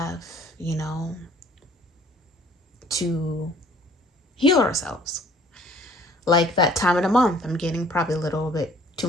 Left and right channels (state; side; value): normal; both; correlation 0.56